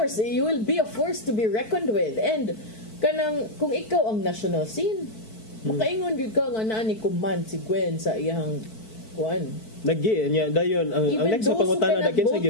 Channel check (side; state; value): right; late; 4.5 ms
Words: you will be a force to be reckoned with. And kanang kung ikaw ang national scene, makaingon gyud ka nga naa ni command si Gwen sa iyang kuan. Nagi niya dayon ang next na pangutana na kinsa